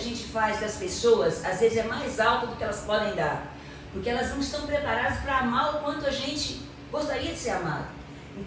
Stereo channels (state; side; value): identical; both; correlation 1.00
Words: faz das pessoas, às vezes é mais alta do que elas podem dar, porque elas não estão preparadas para amar o quanto a gente gostaria de ser amado.